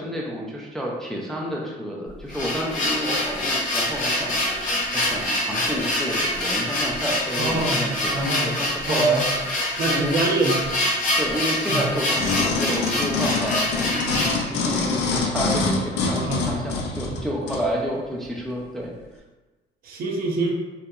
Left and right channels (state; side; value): normal; both; correlation 0.34